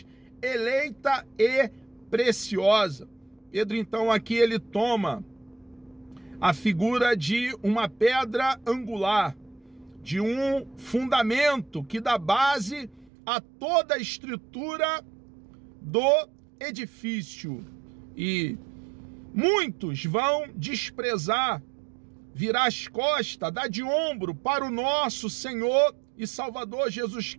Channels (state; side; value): drops out; left; at 13.1 s